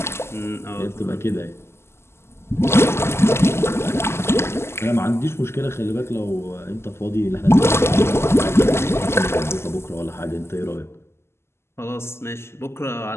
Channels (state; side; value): late; right; 0.12 ms